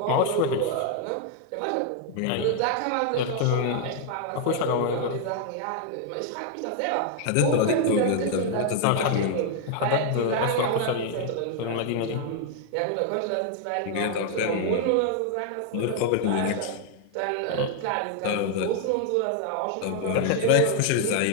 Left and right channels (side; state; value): both; different; correlation 0.00